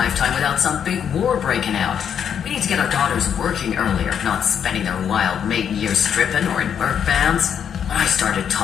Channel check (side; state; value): right; quieter; 8.2 dB